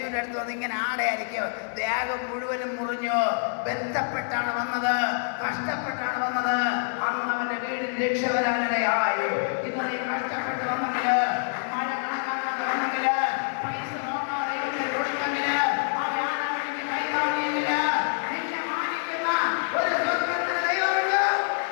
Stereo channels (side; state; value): right; silent; 60 dB below the other